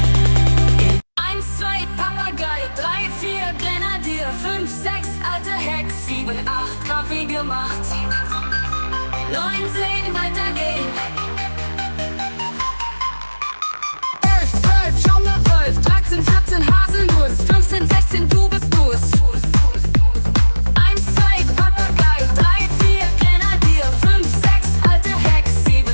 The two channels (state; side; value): inverted; both; correlation -1.00